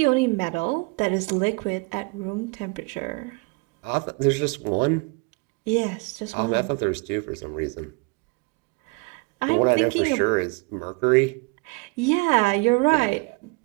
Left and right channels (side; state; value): left; quieter; 29.6 dB